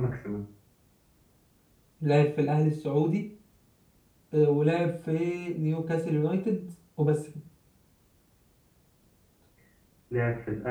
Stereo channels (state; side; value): identical; both; correlation 1.00